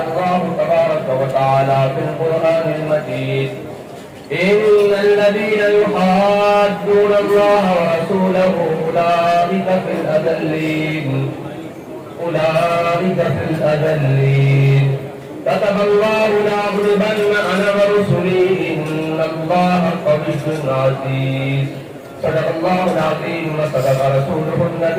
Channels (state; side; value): identical; both; correlation 1.00